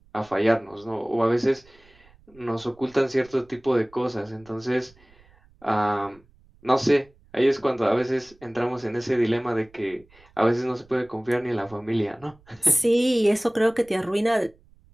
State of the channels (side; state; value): right; noise; rumble, 29 dB below the sound